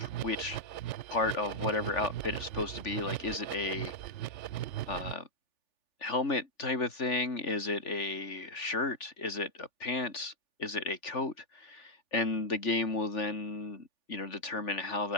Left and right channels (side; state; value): right; late; 3.4 ms